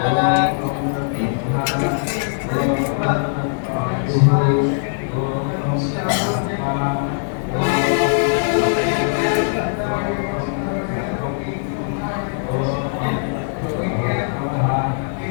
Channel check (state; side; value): silent; right; digital silence